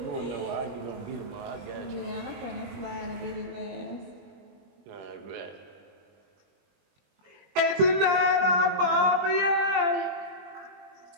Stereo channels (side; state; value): left; late; 21 ms